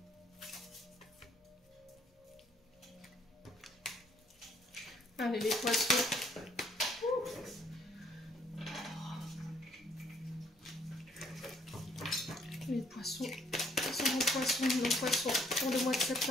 Allez, les poissons. Les poissons. Nos poissons pour le mois de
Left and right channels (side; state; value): both; normal; correlation 0.65